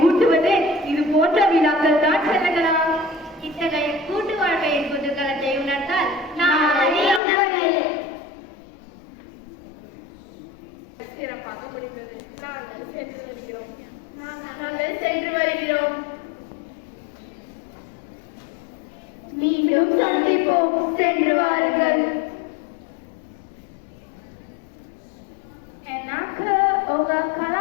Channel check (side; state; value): right; drops out; at 7.2 s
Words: ஊட்டுவதே இது போன்ற விழாக்கள் தான் செல்லுங்களா. இத்தகைய கூட்டு வாழ்க்கையின் குதூகலத்தை உணர்ந்தால் சிறப்பாக முடிந்தது. நாங்கள் சென்று வருகிறோம். நாங்கள் சென்று வருகிறோம். மீண்டும் சந்திப்போம். சென்று வாருங்கள். எனக்கு உங்க